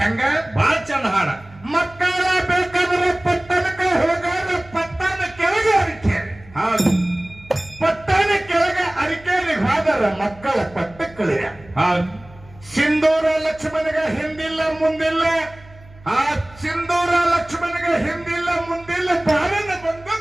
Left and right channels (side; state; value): right; noise; hum, 23 dB below the sound